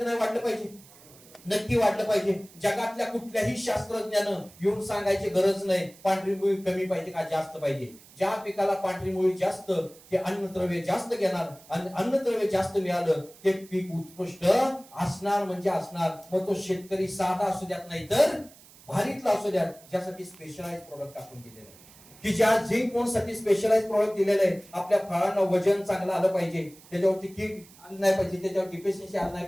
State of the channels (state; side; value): noise; right; hiss, 23 dB below the sound